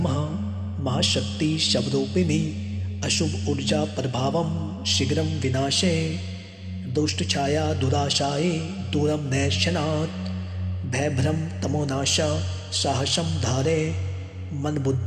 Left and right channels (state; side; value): identical; both; correlation 1.00